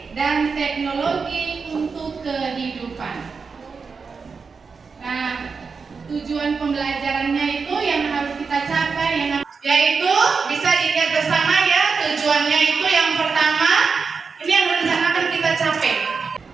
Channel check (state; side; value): quieter; left; 5.1 dB